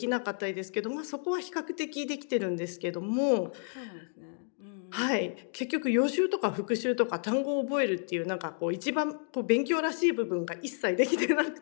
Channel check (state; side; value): silent; right; 57 dB below the other